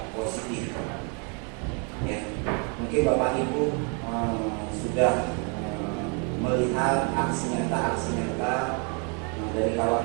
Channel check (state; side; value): quieter; left; 36.6 dB